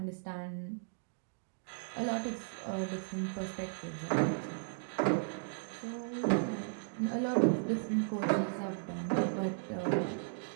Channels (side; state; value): left; silent; digital silence